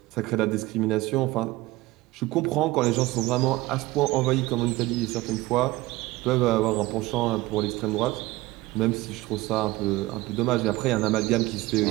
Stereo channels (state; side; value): quieter; left; 19.1 dB